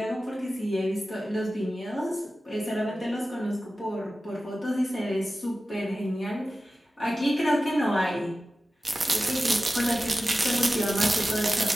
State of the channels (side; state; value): both; normal; correlation 0.94